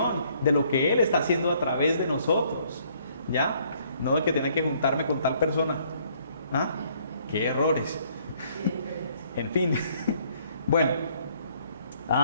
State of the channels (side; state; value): both; inverted; correlation -0.64